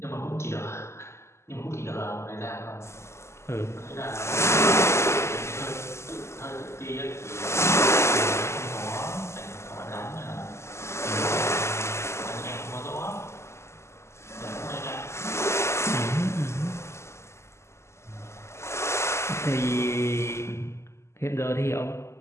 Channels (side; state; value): right; late; 0.13 ms